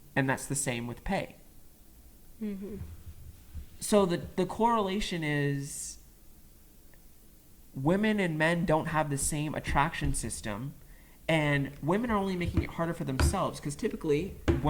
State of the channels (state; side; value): identical; both; correlation 1.00